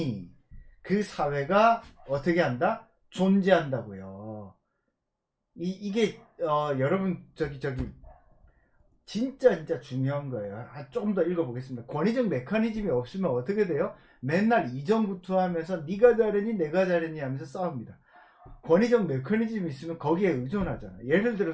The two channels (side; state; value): both; identical; correlation 1.00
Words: 그 사회가 어떻게 한다? 존재한다고요. 이게 여러분 저기 진짜 중요한 거예요. 조금 더 읽어보겠습니다. 권위적 메커니즘이 없으면 어떻게 돼요? 맨날 이전구투하면서 네가 잘했니 내가 잘했니 하면서 싸웁니다. 권위적 메커니즘이 있으면 거기에 의존하잖아. 예를